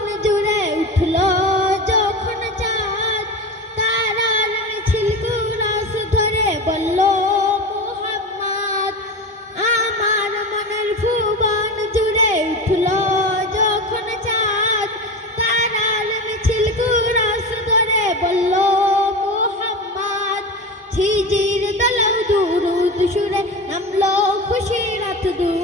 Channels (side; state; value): both; normal; correlation 0.26